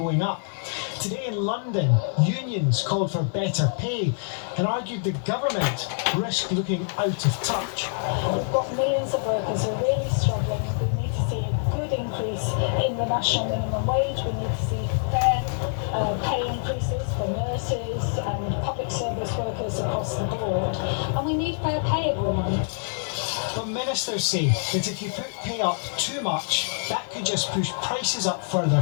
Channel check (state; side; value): silent; right; digital silence